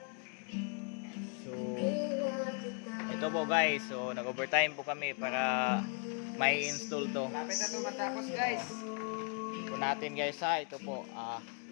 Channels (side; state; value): right; quieter; 38.7 dB